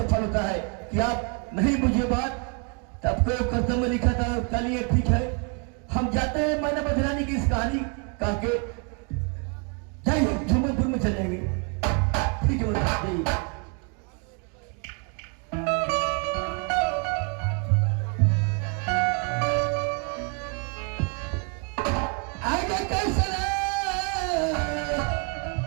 फल होता है कि आप नहीं बुझे बात तब को कर्तव्य में लिखा था। चलिए ठीक है, हम जाते हैं मनोवती रानी की इस कहानी कह के जाइए, झूमरपुर में चले जाएंगे। ठीक है जाइए। आगे कैसे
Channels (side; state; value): left; quieter; 36.2 dB